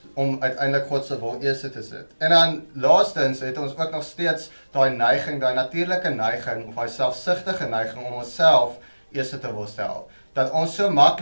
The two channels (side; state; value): both; inverted; correlation -1.00